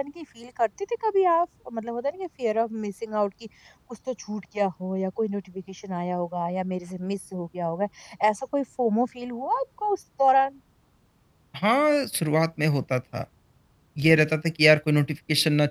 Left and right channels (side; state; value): both; identical; correlation 1.00